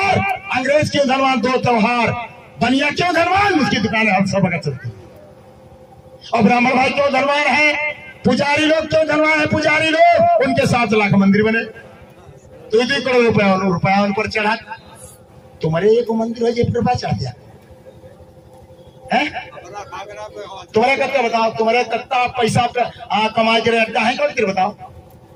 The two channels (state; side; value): identical; both; correlation 1.00